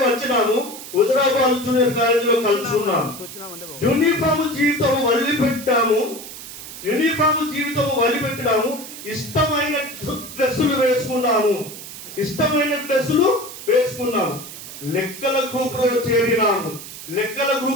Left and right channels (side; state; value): right; noise; hiss, 12 dB below the sound